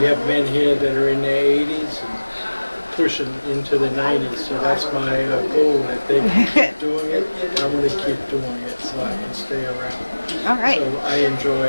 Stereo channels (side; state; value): both; inverted; correlation -1.00